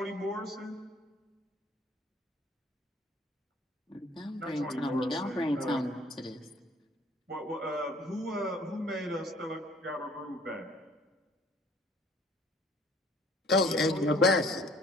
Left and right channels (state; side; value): normal; both; correlation 0.55